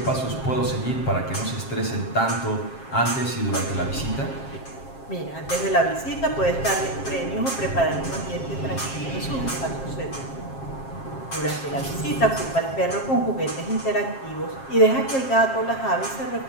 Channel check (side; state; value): right; late; 7.5 ms